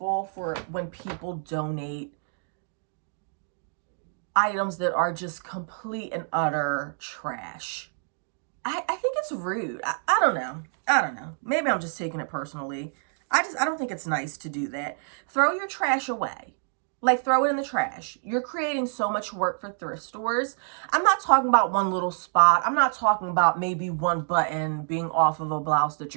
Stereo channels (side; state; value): left; silent; 60 dB below the other